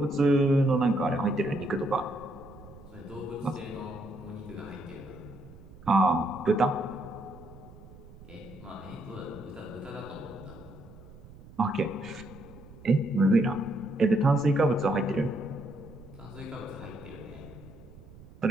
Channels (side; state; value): right; noise; rumble, 19 dB below the sound